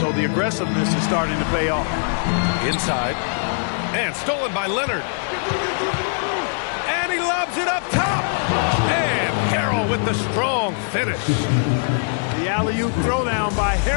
the aggressiveness is starting to pay off. Inside. And stolen by Leonard. And he lobs it up top. And Harrell with the strong finish. The alley-oop throwdown by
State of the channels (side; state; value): right; silent; 65 dB below the other